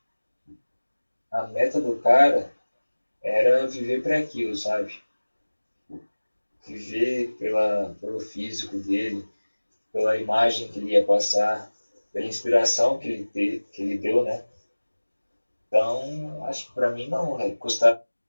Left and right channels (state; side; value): inverted; both; correlation -1.00